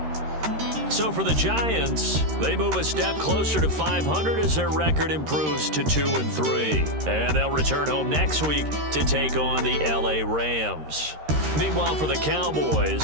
So for the Giants, they move a step closer to 500 as their record improves to 2-3. And they'll return home next week to take on the LA Rams. Meanwhile, for the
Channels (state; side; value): late; left; 13 ms